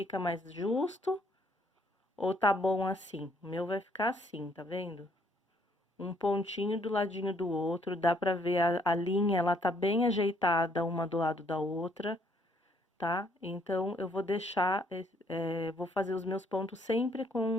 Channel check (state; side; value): normal; both; correlation 0.67